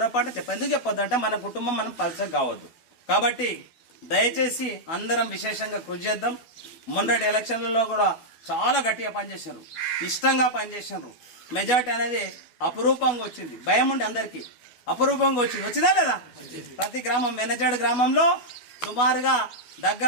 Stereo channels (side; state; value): right; late; 12 ms